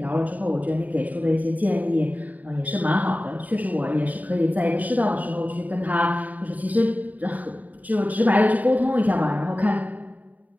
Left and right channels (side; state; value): left; late; 0.076 ms